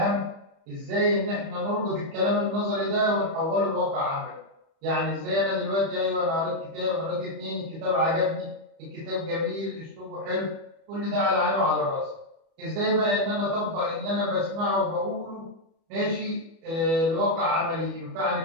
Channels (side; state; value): left; late; 31 ms